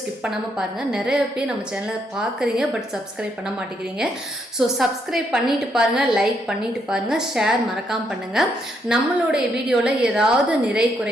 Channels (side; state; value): both; normal; correlation 0.75